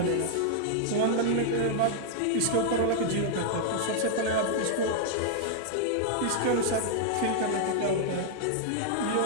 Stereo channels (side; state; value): both; different; correlation 0.00